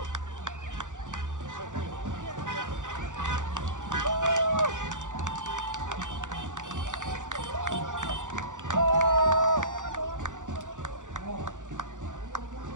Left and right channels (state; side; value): late; left; 0.86 ms